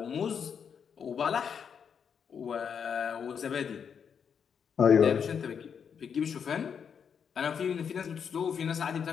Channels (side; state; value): right; quieter; 7.1 dB